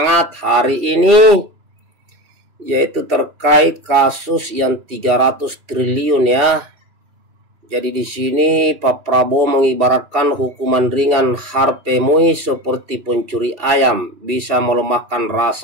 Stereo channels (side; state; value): left; late; 2.7 ms